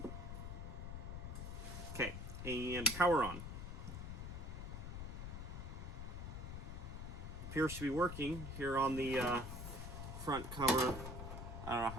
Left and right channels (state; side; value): noise; left; rumble, 6 dB below the sound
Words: Okay, and power on. Appears to be working here on the front cover. I don't know